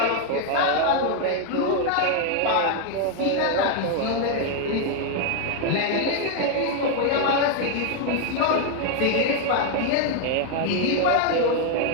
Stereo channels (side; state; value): both; different; correlation 0.01